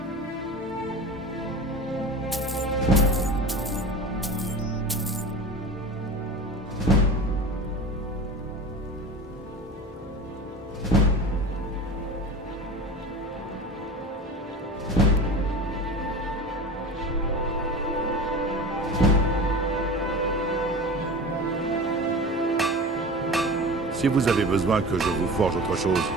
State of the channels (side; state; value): both; normal; correlation 0.33